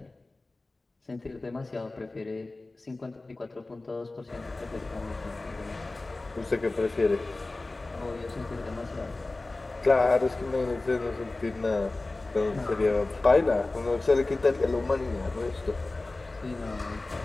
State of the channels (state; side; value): quieter; right; 3.1 dB